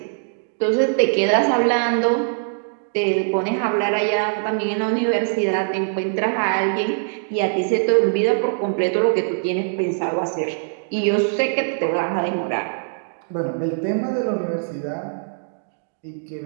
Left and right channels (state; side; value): silent; left; digital silence